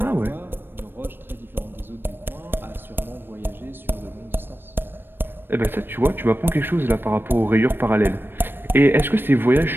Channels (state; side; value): late; left; 0.098 ms